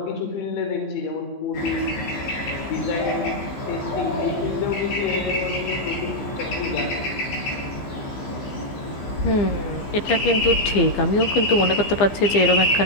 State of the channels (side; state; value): right; late; 15 ms